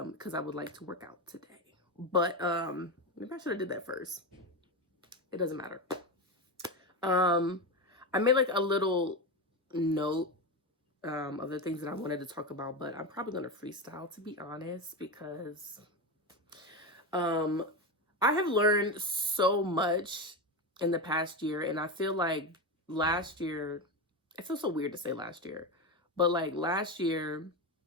I would like to work out today. But maybe I should have did that first. It doesn't matter. I made like a little note of the things that I wanted to talk about, but I'm probably going to freestyle, to be honest, because I have learned so much in the past year, and I feel like last year, it feels so weird to say last year, but like last year,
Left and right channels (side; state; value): both; normal; correlation 0.16